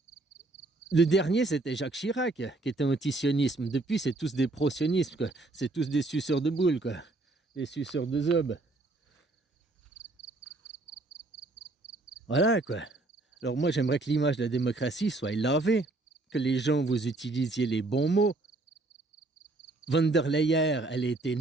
le dernier, c'était Jacques Chirac, qui était anti-sionisme. Depuis, c'est tous des pro-sionismes, quoi. C'est tous des suceurs de boules, quoi. Des suceurs de zob. Voilà, quoi. Alors moi, j'aimerais que l'image de la démocratie soit lavée, que les gens, vous utilisiez les bons mots. Von der Leyen, elle a été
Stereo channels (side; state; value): left; quieter; 3.0 dB